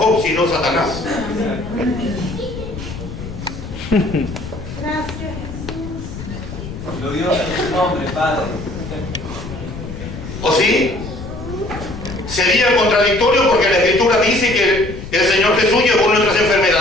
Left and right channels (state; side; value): noise; left; rumble, 10 dB below the sound